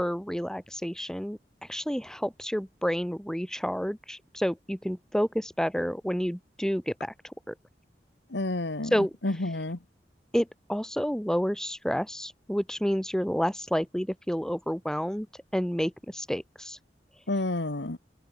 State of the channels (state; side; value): normal; both; correlation 0.90